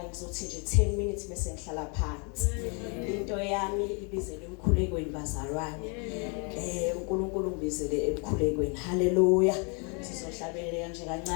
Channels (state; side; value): quieter; right; 35.3 dB